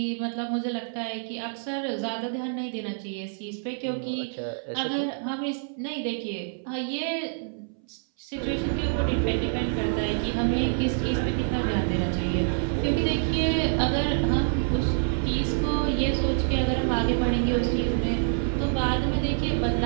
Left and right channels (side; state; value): left; silent; 60 dB below the other